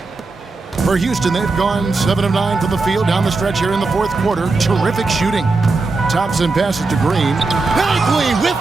For Houston, they've gone 7 of 9 from the field down the stretch here in the fourth quarter. Terrific shooting. Thompson passes to Green. Bagley with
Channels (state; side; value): quieter; left; 3.7 dB